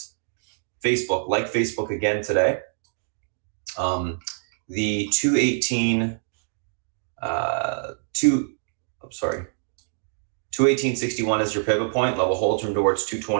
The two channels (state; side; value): silent; left; digital silence